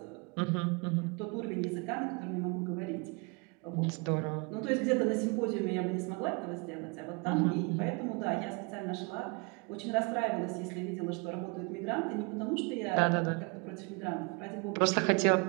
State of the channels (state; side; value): quieter; left; 31.2 dB